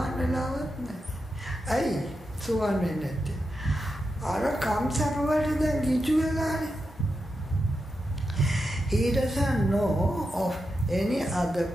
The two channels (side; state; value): both; normal; correlation 0.88